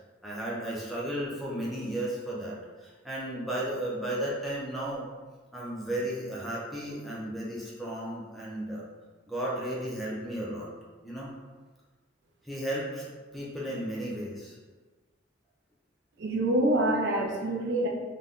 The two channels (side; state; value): both; normal; correlation 0.36